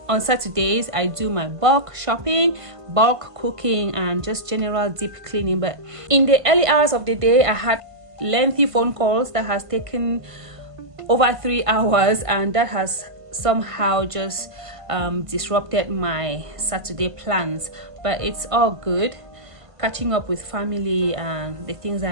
on Saturdays, I do my bulk shopping, bulk cooking, and just general deep cleaning. But in the early hours of the day, I had lengthy phone calls that has taken over 3 hours, and that has somehow just disrupted my Saturday plans. But it's all good. Catching up with family and the things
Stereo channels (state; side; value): late; left; 1.5 ms